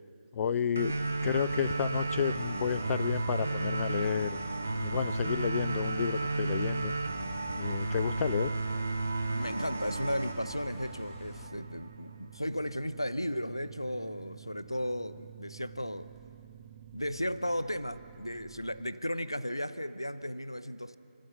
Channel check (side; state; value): both; inverted; correlation -0.81